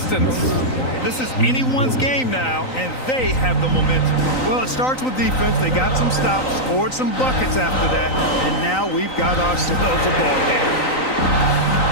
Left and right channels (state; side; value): late; right; 3.9 ms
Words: This is anyone's game now, and they have the momentum. Well, it starts with defense. They got some stops, scored some buckets after that, and now we've got ourselves a ball game.